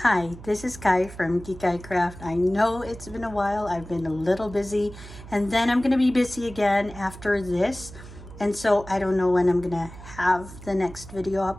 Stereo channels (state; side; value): noise; right; hum, 16 dB below the sound